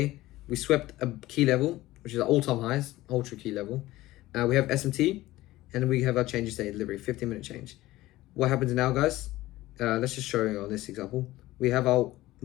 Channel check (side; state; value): right; quieter; 17.2 dB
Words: We swept a key level, which is our all-time highs, ultra key level. We have SMT, and then we have our change of state delivery, 15-minute change. What happens now, guys? Let's just show you on this example. We have our